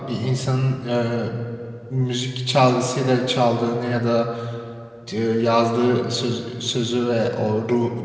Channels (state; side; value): identical; both; correlation 1.00